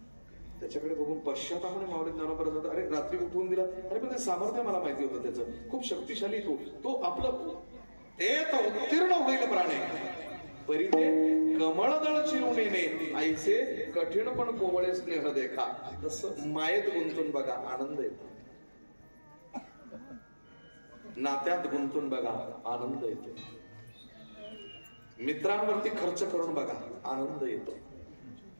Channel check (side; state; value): both; inverted; correlation -1.00